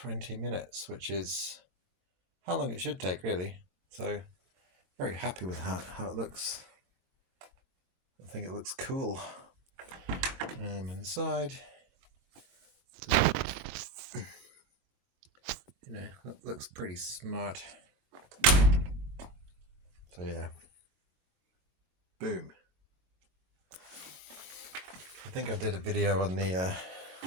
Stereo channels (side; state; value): left; late; 23 ms